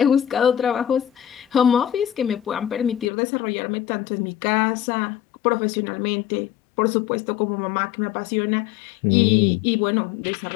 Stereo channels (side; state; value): right; drops out; at 3.1 s